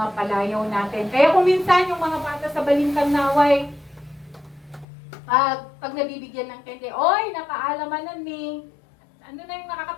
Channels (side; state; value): right; drops out; at 4.9 s